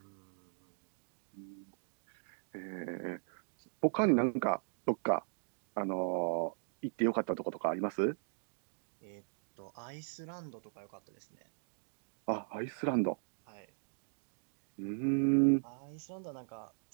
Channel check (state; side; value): silent; left; digital silence